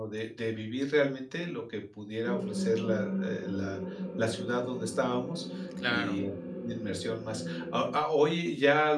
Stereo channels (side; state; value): both; identical; correlation 1.00